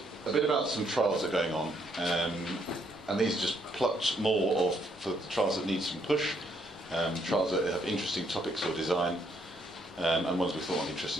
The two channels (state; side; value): normal; both; correlation 0.71